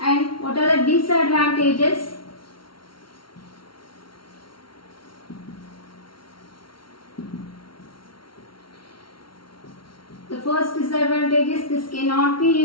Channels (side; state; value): right; late; 0.74 ms